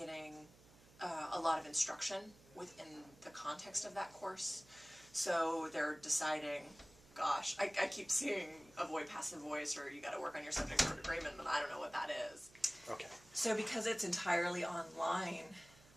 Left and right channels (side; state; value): right; noise; hum, 24 dB below the sound